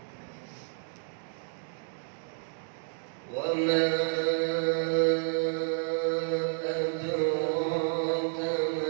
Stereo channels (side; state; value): left; silent; 58 dB below the other